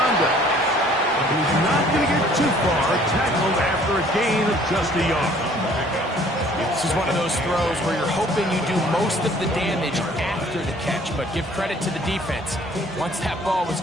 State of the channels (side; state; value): both; normal; correlation 0.56